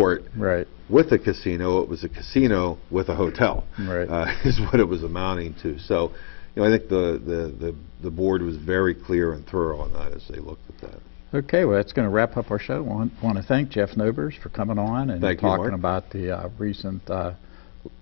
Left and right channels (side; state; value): right; silent; digital silence